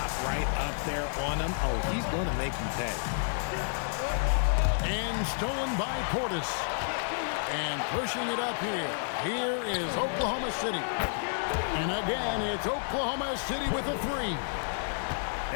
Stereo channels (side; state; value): right; silent; digital silence